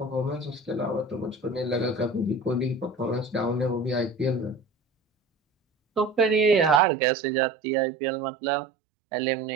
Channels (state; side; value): drops out; left; at 6.8 s